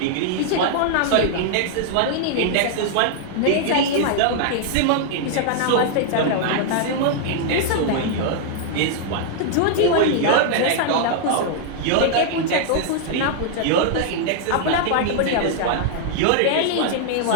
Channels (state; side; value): different; both; correlation -0.01